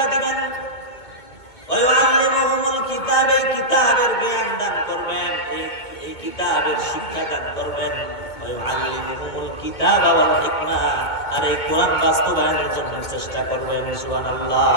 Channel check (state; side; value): late; right; 2.2 ms